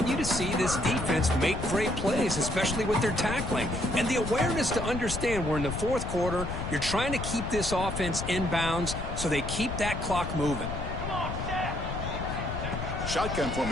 to see this defense make great plays, especially with their tackling. And the awareness to understand we're in the fourth quarter, you're trying to keep this offense in bounds so they keep that clock moving. Shotgun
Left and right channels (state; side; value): noise; left; rumble, 5 dB below the sound